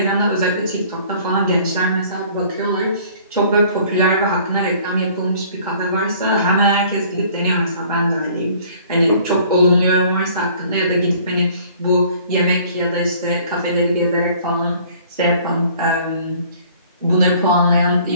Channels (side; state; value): both; inverted; correlation -0.54